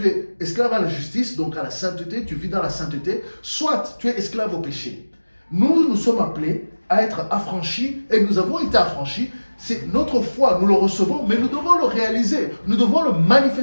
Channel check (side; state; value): both; inverted; correlation -1.00